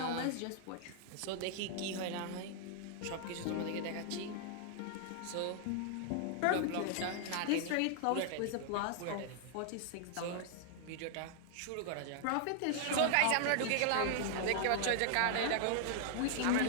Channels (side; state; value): both; different; correlation 0.00